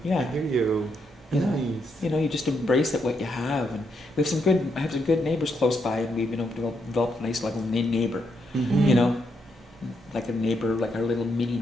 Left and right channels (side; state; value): both; normal; correlation 0.78